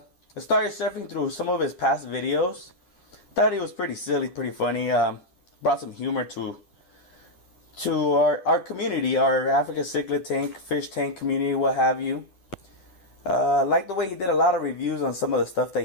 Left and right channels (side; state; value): right; late; 11 ms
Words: started surfing through some of his past videos. Thought he was pretty silly, pretty funny. Brought some humor to our community, our African cichlid tank, fish tank community, what have you. Like the way he did a lot of reviews on some of the stuff